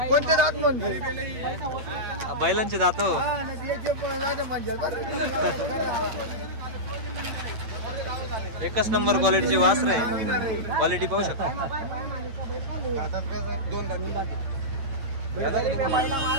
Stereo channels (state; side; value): late; left; 8.8 ms